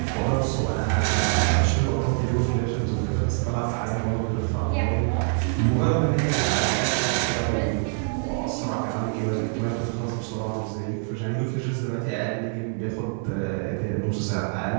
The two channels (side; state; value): left; silent; 55 dB below the other